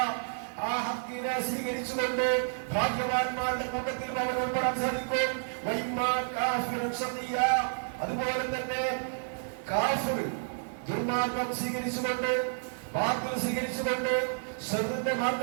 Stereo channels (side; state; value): left; silent; digital silence